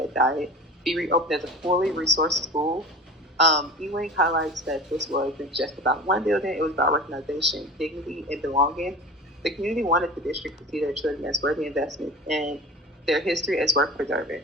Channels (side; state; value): both; normal; correlation 0.35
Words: Dyer be reopened as a fully resourced school. Ewing highlights that this wasn't just about one building, it was about recognition, dignity, and belonging. The community wanted the district to see their children as worthy investments and their history as worth preserving.